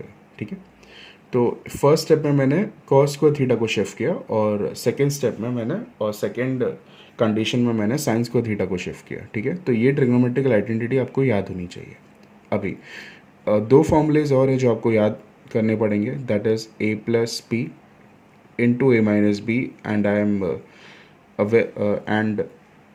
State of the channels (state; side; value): identical; both; correlation 1.00